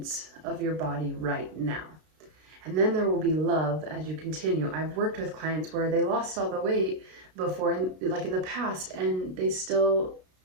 of your body right now. And then there will be love as you continue. I've worked with clients where they lost all the weight before, like in the past, and they still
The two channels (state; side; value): late; left; 32 ms